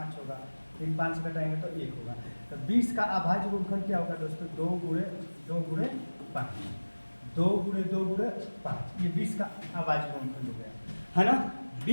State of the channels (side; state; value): both; inverted; correlation -1.00